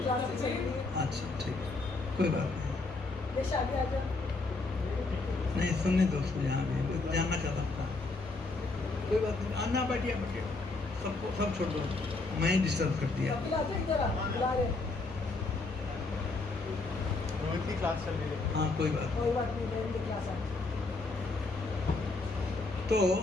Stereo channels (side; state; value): right; quieter; 3.5 dB